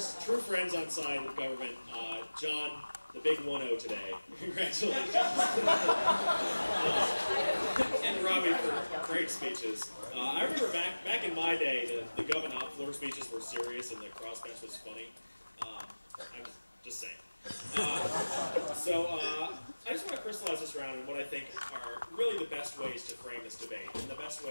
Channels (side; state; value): both; inverted; correlation -1.00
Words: true friends on side with government, John, the big 1-0 today. Congratulations. And Robbie for great speeches. I remember back in my day, the government floor speeches were serious and the crossbench was funny. I was just saying. I just want to crystallize this around in what I think are really the best ways to frame this debate and the best